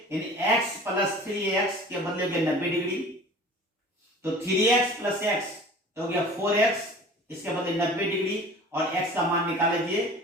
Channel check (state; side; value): normal; both; correlation 0.44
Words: यानी x प्लस 3x के बदले में 90 डिग्री, तो 3x प्लस x तो हो गया 4x, इसके बदले 90 डिग्री, और x का मान निकाल लीजिए,